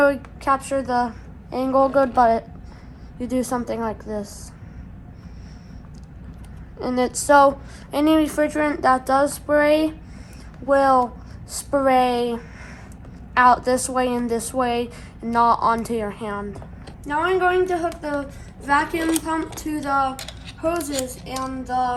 capture the angle good, but you do something like this. And it's so any refrigerant that does spray will spray out this way and this way, and not onto your hand. Now I'm going to hook the vacuum pump to the hoses and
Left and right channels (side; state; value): both; identical; correlation 1.00